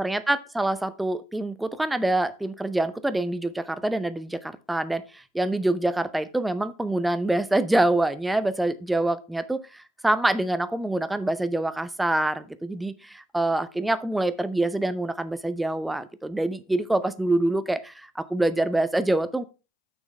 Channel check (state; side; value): normal; both; correlation 0.93